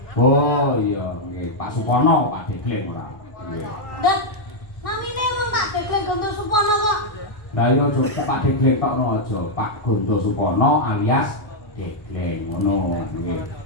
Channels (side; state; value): right; late; 1.6 ms